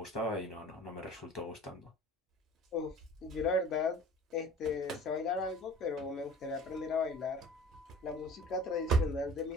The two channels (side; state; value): both; normal; correlation 0.44